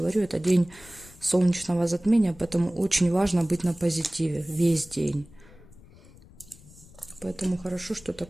это день солнечного затмения, поэтому очень важно быть на позитиве весь день. Поэтому хорошо, что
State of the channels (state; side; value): noise; left; rumble, 23 dB below the sound